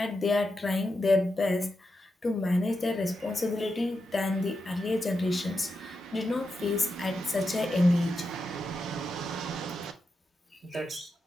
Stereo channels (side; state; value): both; normal; correlation 0.87